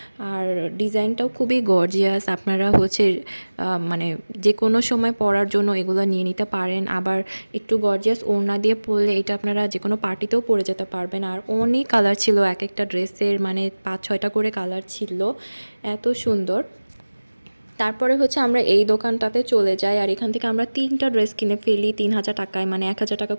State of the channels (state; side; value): inverted; both; correlation -1.00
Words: আর ডিজাইনটাও খুবই গর্জিয়াস। আপনারা হচ্ছে মানে যে কোনো সময় পরার জন্য এগুলো নিয়ে নিতে পারেন। আবার একটু গর্জিয়াস ওড়না দিয়ে পরলে এটা আপনারা যে কোনো পার্টিতেও পরে যেতে পারবেন। আর অনেক কালার ছিল এক একটা ড্রেসের, মানে 5-6টা করে কালার ছিল, এত সুন্দর। তারপরে হচ্ছে আমরা এই দোকানটাতে চলে যাই আর এখান থেকে আমরা 3টা ড্রেস কিনে ফেলি 3000 টাকায়, মানে 1000 টাকা